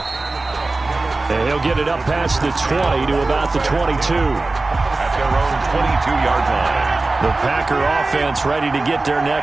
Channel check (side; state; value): left; quieter; 3.3 dB